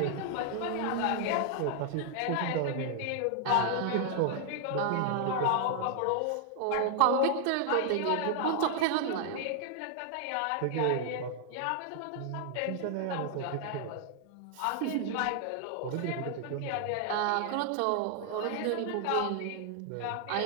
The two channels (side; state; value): both; different; correlation 0.00